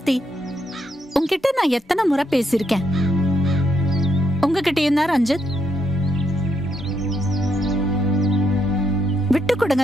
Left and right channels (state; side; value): normal; both; correlation 0.77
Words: உங்ககிட்ட நான் எத்தனை முறை பேசியிருக்கேன். உங்ககிட்டயும் தான் ரஞ்சித். விட்டு